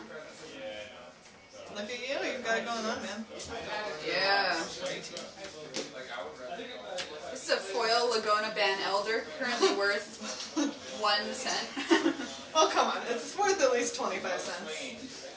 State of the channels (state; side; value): identical; both; correlation 1.00